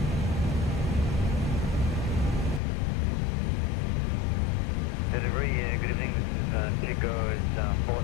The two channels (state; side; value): drops out; right; at 2.6 s